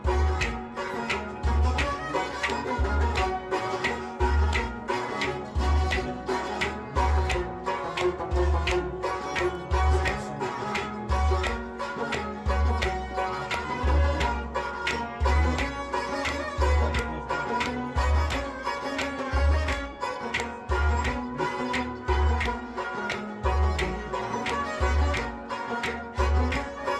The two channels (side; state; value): both; identical; correlation 1.00